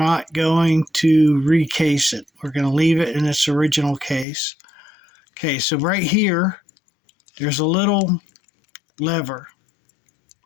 going to recase it. We're going to leave it in its original case. Okay, so right here, there's a little lever,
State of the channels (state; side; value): drops out; right; at 4.2 s